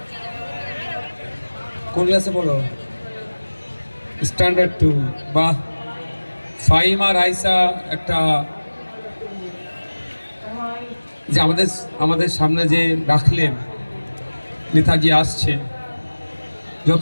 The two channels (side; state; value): both; inverted; correlation -1.00